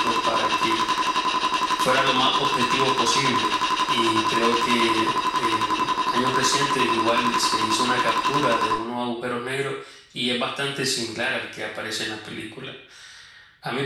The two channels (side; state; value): both; identical; correlation 1.00